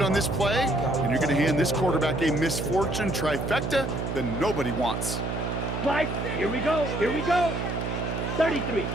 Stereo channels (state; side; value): noise; right; hum, 3 dB below the sound